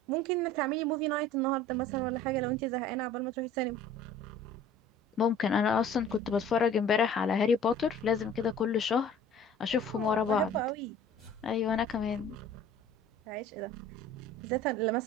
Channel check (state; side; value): normal; both; correlation 0.47